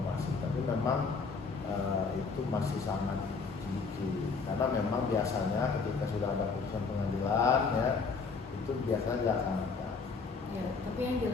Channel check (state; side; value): quieter; right; 4.7 dB